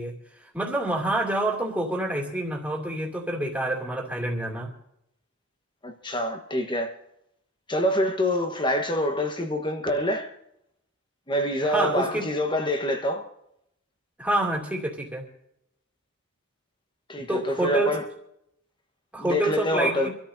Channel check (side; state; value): both; normal; correlation 0.45